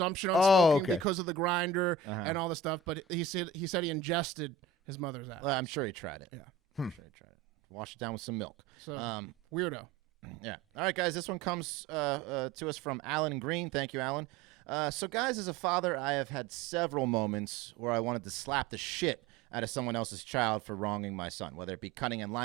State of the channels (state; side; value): quieter; left; 5.2 dB